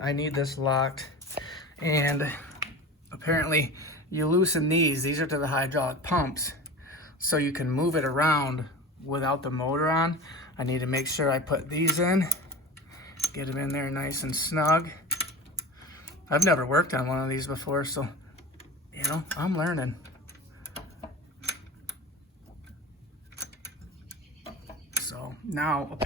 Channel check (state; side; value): normal; both; correlation 0.32